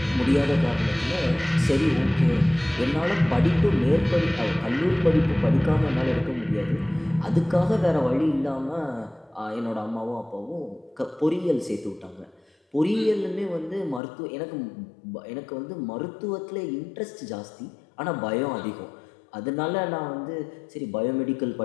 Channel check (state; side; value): drops out; right; at 14.0 s